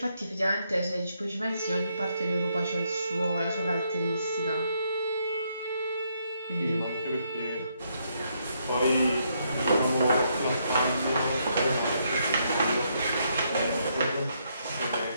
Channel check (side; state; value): both; inverted; correlation -0.75